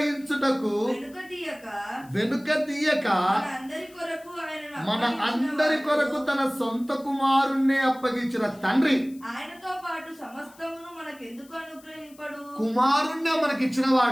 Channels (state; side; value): noise; left; hiss, 26 dB below the sound